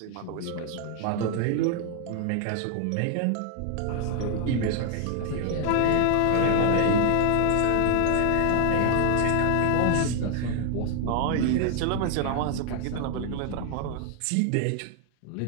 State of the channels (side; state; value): both; different; correlation 0.00